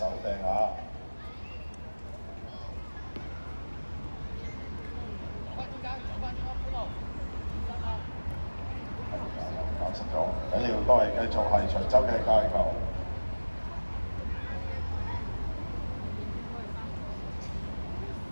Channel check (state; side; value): inverted; both; correlation -1.00